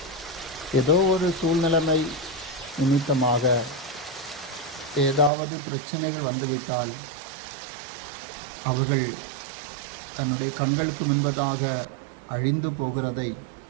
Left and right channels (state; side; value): drops out; left; at 5.3 s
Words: ஏதோ ஒரு சூழ்நிலைமை நிமித்தமாக ஏதாவது பிரச்சனைகள் வந்துவிட்டால் அவர்கள் தன்னுடைய கண்களுக்கு முன்பதாக அழிந்து போகிறதை